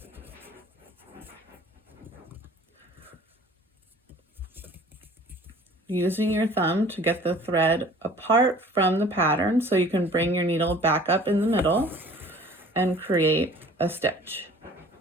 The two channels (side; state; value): both; normal; correlation 0.48